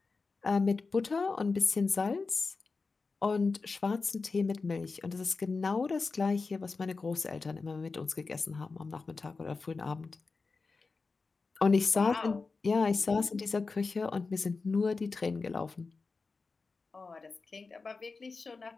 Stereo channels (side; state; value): right; quieter; 4.2 dB